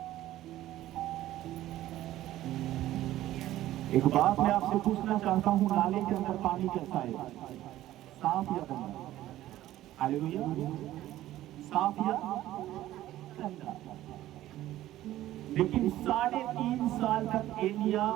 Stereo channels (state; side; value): quieter; left; 14.3 dB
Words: एक बात मैं आपसे पूछना चाहता हूं, नाले के अंदर पानी कैसा है? साफ या गंदा? हालेलुया। साफ या गंदा? लेकिन 3.5 साल तक एलिया